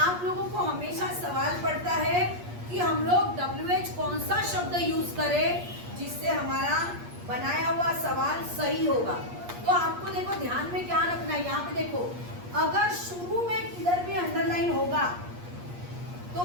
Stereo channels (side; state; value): left; late; 8.4 ms